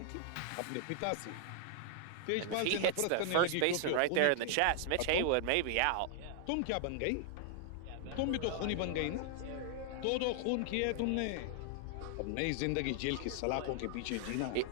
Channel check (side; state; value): both; different; correlation 0.00